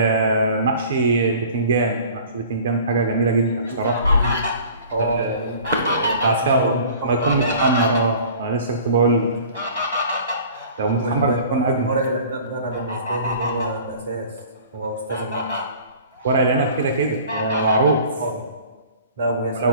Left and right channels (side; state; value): both; inverted; correlation -0.46